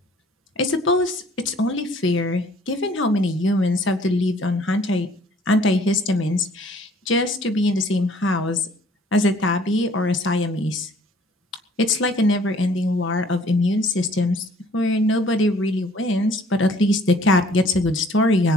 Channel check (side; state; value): both; normal; correlation 0.57